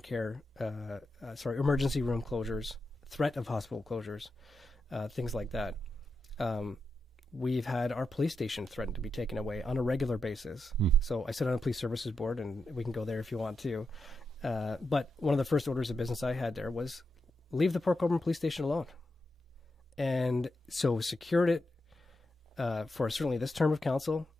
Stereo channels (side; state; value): both; normal; correlation 0.86